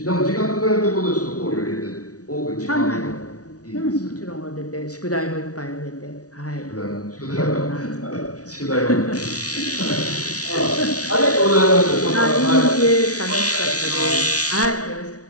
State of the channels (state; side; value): late; right; 0.68 ms